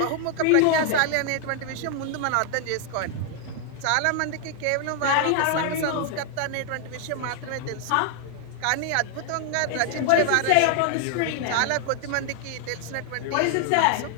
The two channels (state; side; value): different; both; correlation 0.00